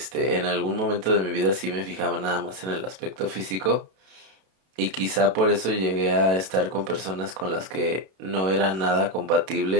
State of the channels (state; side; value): late; left; 32 ms